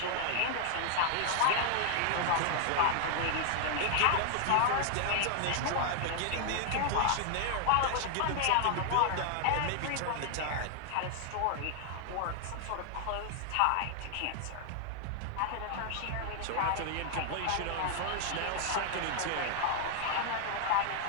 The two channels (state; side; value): different; both; correlation 0.00